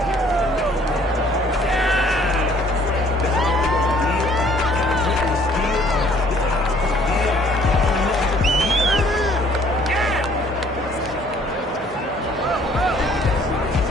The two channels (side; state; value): both; normal; correlation 0.58